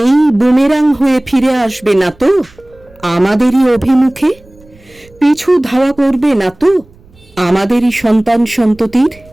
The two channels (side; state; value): right; noise; rumble, 28 dB below the sound